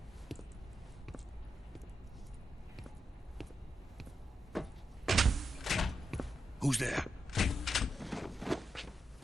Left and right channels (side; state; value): both; normal; correlation 0.86